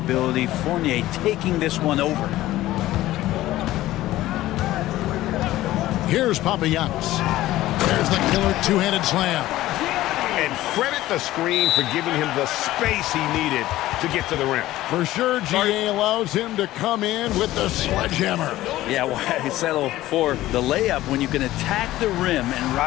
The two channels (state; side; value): quieter; right; 15.7 dB